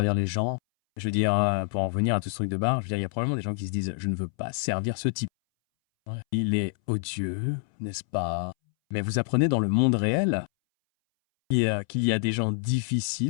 les gens. Je veux dire, pour en revenir à tout ce truc de bar, je veux dire, il y a probablement des gens qui se disent « Je ne veux pas servir ce type. Ouais. Il est odieux, n'est-ce pas ?» Mais vous apprenez dans le monde réel qu'il y a des gens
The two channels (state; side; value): silent; right; 60 dB below the other